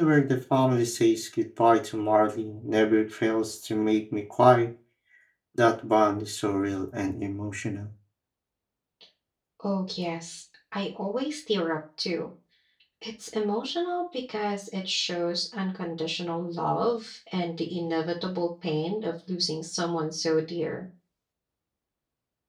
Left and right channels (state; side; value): identical; both; correlation 1.00